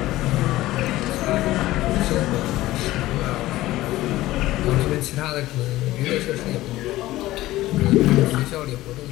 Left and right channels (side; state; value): right; quieter; 16.6 dB